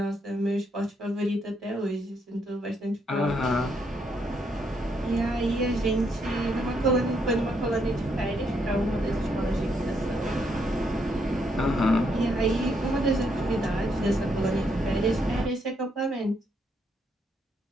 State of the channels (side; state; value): both; normal; correlation 0.75